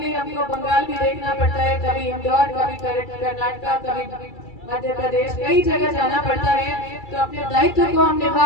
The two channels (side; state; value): right; late; 2.3 ms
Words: हमको बंगाल भी देखना पड़ता है, कभी इंदौर, कभी कर्नाटक, कभी मध्य प्रदेश, कई जगह जाना पड़ता है, तो अपने दायित्व को हम